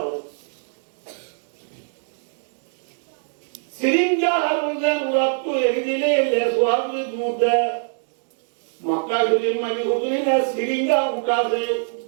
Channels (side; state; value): left; silent; digital silence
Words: সিরিঞ্জা হারুজেন ওরা তো এগিয়ে দিলে লেসওয়ার দুধে মক্কা শরীফ মানে হুজুরি না সিরিঞ্জা উঠাছে